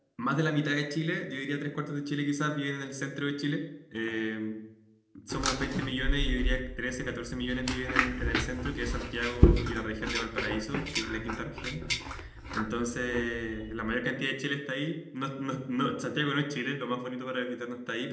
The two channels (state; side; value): identical; both; correlation 1.00